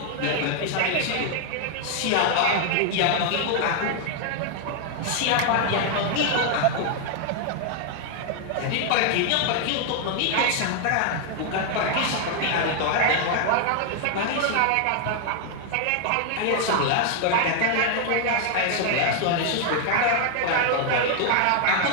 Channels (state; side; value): different; both; correlation 0.00